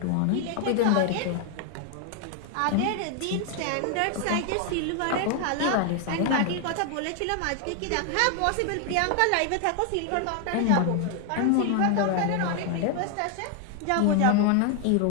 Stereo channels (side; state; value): both; different; correlation 0.00